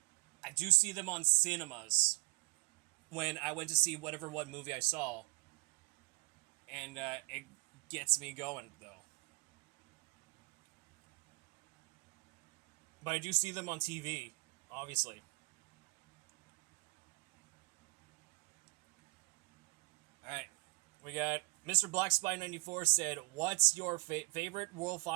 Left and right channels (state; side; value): quieter; left; 26.5 dB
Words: I do see them on cinemas when I went to see whatever one movie I saw. And it gets me going, though. But I do see them on TV, obviously. Alright, we got Mr. Black Spy 94 said, What's your favorite World